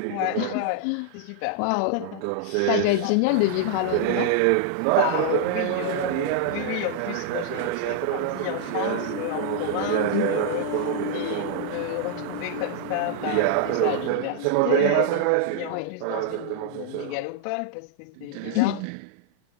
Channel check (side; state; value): both; different; correlation -0.01